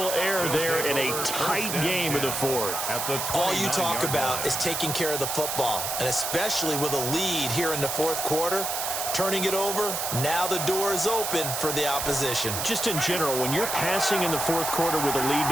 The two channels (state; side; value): noise; right; hiss, 2 dB below the sound